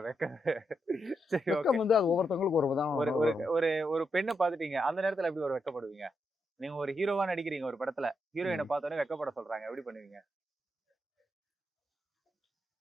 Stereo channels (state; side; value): normal; both; correlation 0.83